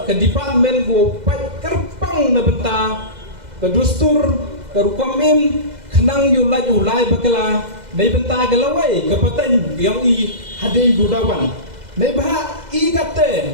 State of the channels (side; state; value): left; late; 2.0 ms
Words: ke department go pai kerpang na benta ke dustur ke rukomim kenang ulai bakala nei benta galawai ke paten yang i hadai gudawan nei bah i